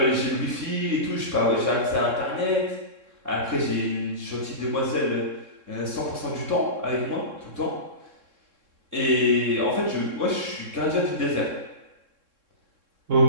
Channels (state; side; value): late; left; 3.6 ms